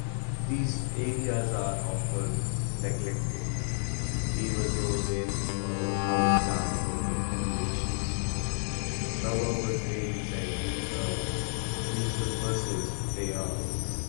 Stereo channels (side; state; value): right; silent; digital silence